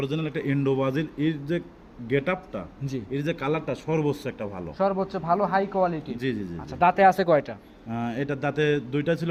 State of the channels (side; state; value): both; identical; correlation 1.00